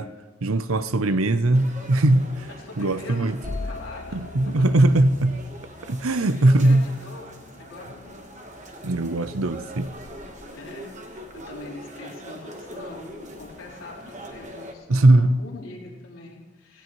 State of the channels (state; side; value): normal; both; correlation 0.81